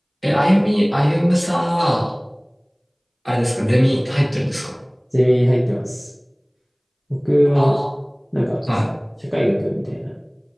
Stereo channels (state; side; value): identical; both; correlation 1.00